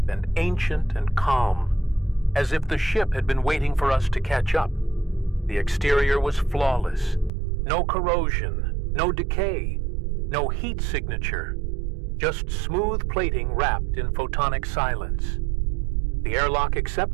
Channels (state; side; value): drops out; left; at 7.3 s